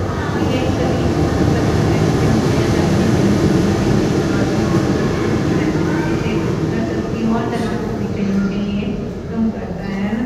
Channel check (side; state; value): both; identical; correlation 1.00